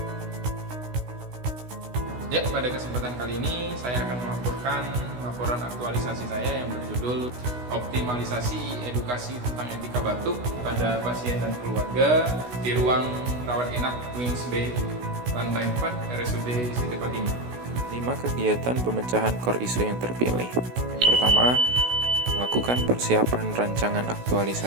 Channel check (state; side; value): late; left; 16 ms